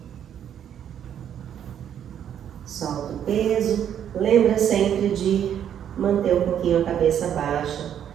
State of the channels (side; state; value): left; quieter; 9.5 dB